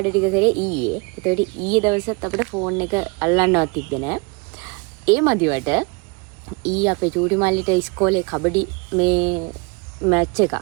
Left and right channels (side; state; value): left; quieter; 30.4 dB